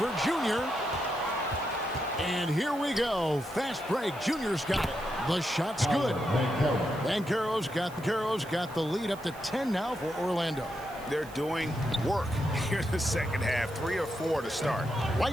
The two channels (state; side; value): noise; right; hiss, 21 dB below the sound